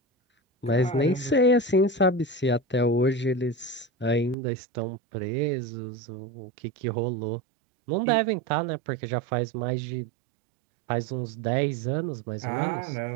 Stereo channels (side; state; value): left; drops out; at 4.4 s